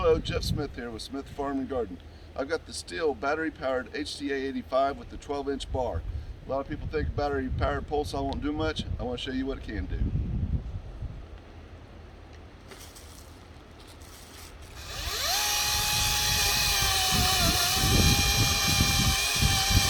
Jeff Smith here with Smith Farm and Garden. I've got the Stihl battery-powered HTA-85 with the 12-inch bar. A lot of people think battery-powered pole saw won't do much. I want to show you what it can do.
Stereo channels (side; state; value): both; identical; correlation 1.00